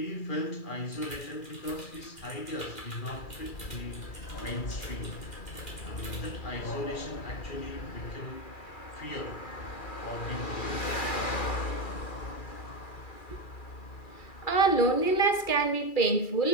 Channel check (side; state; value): right; late; 2.3 ms